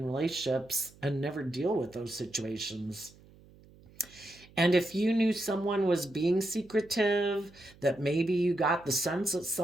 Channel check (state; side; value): noise; right; hum, 25 dB below the sound